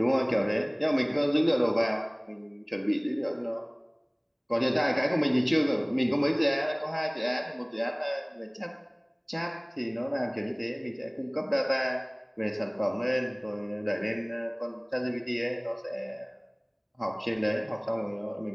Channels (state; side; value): identical; both; correlation 1.00